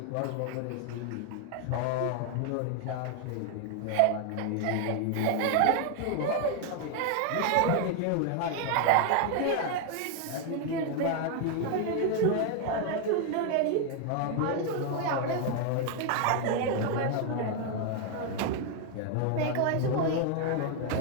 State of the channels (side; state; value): both; different; correlation 0.00